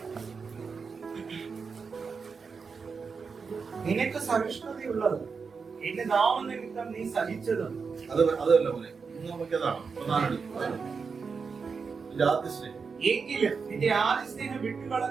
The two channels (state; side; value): quieter; left; 5.3 dB